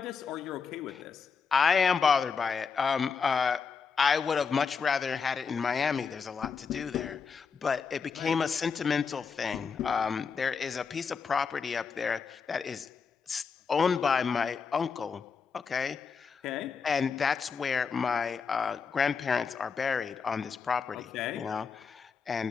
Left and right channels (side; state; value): right; quieter; 5.7 dB